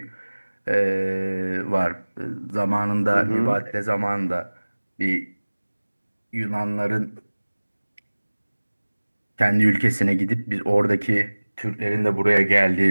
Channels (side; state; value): both; inverted; correlation -1.00